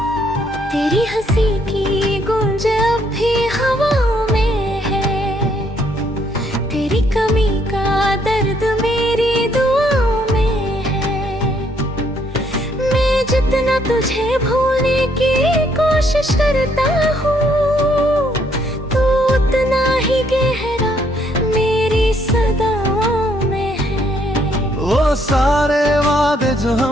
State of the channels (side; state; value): both; normal; correlation 0.69